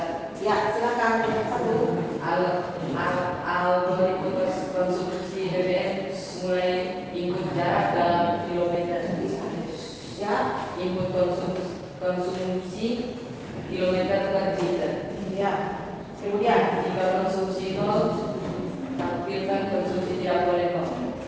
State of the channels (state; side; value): identical; both; correlation 1.00